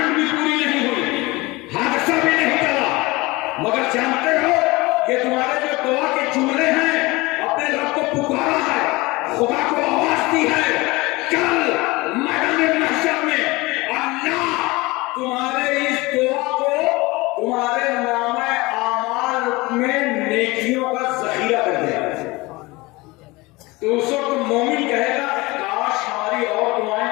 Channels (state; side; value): quieter; right; 22.5 dB